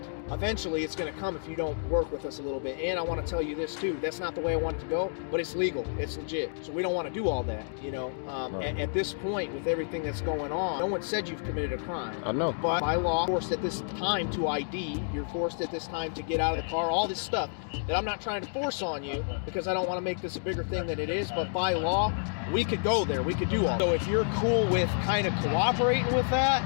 eventually it's going to come if you don't work with us a little bit. And I want to tell you this too. That's not the way I want it to go, but it's legal. It's legit. So we don't want to do all that, you know. At this point, with everything that's going on, no one said you've committed a crime. I know. But by law, you're forced at this time to ID. You're forced at this time to get out of the car. All this stuff that I'm not trying to force on you because I don't want to make this a bigger thing than it is. But by law, we could go there. We could do all. So if you're cool with kind of cooperating with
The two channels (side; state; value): right; silent; digital silence